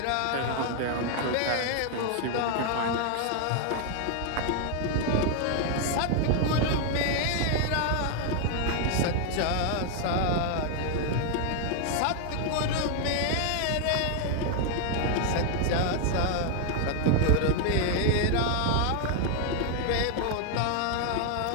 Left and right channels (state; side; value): different; both; correlation 0.00